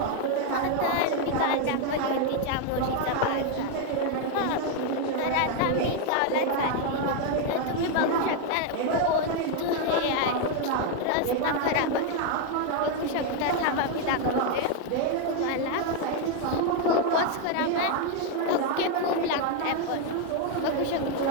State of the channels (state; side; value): different; both; correlation 0.01